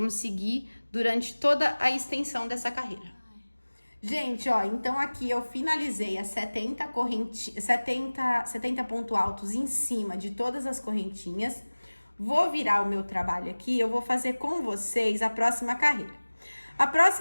seguir durante toda a extensão dessa carreira. Gente, ó, então aqui eu finalizei as 70 pontos altos em cima de todas as correntinhas. Vou virar o meu trabalho aqui, eu vou fazer com vocês a próxima carreira. A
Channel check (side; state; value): both; inverted; correlation -1.00